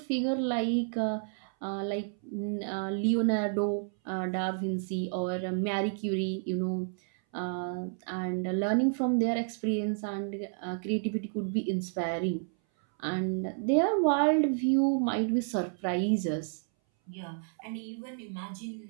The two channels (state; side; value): silent; left; 57 dB below the other